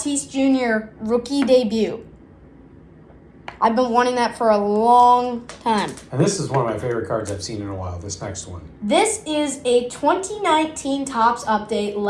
Jr. rookie debut. I've been wanting that for a long time. And this is one of my favorite cards I've seen in a while, this next one. This is a 2019 Topps update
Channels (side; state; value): both; identical; correlation 1.00